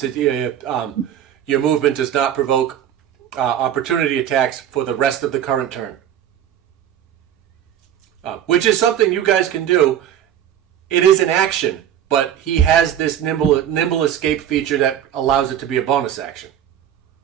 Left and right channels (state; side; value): quieter; left; 10.3 dB